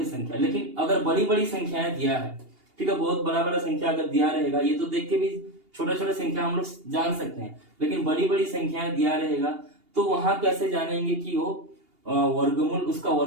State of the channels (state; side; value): late; left; 2.8 ms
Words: संख्या। लेकिन अगर बड़ी बड़ी संख्याएं दिया है, ठीक है, बहुत बड़ा बड़ा संख्या अगर दिया रहेगा, ये तो देख के भी छोटा छोटा संख्या हम लोग जान सकते हैं, लेकिन बड़ी बड़ी संख्याएं दिया रहेगा तो वहां कैसे जानेंगे कि वो वर्गमूल, उसका